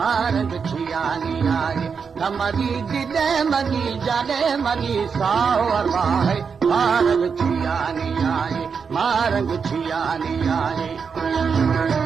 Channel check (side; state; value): left; quieter; 6.0 dB